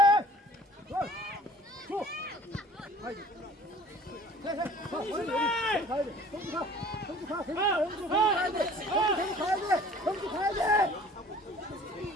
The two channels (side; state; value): both; normal; correlation 0.49